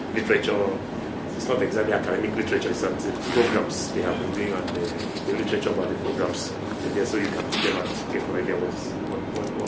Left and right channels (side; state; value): both; identical; correlation 1.00